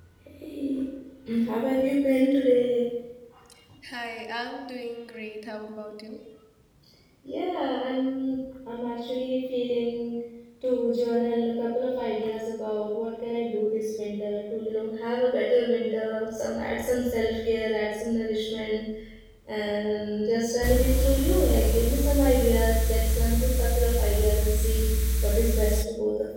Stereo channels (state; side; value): identical; both; correlation 1.00